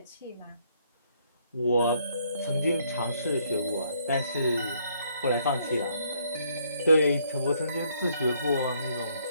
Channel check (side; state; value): both; inverted; correlation -0.68